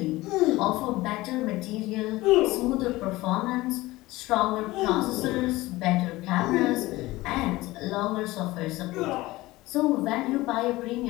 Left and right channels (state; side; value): quieter; right; 19.1 dB